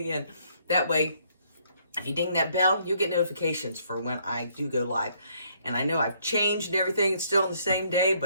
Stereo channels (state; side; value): inverted; both; correlation -0.67